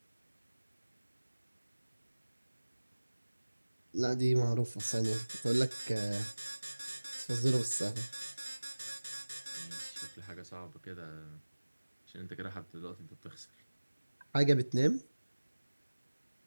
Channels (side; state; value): both; inverted; correlation -1.00